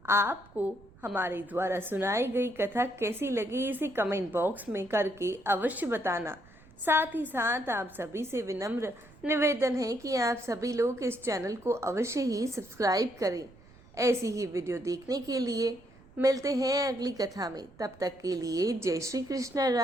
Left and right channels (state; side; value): noise; right; rumble, 25 dB below the sound